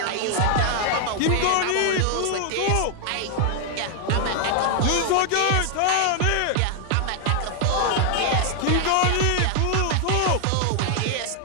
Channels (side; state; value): both; different; correlation 0.00